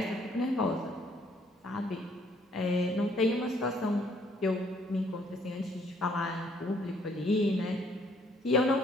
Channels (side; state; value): both; normal; correlation 0.64